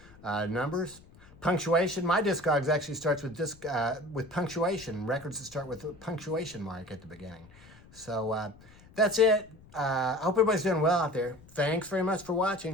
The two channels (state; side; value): noise; left; rumble, 24 dB below the sound